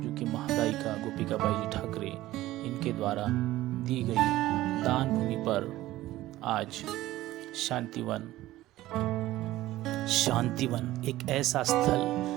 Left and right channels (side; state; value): left; quieter; 16.0 dB